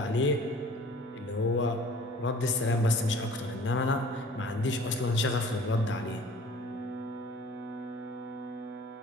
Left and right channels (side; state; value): both; normal; correlation 0.48